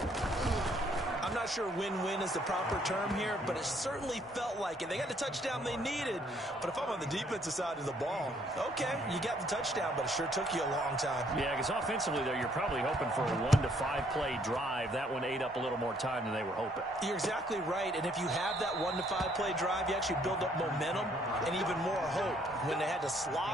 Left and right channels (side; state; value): both; normal; correlation 0.66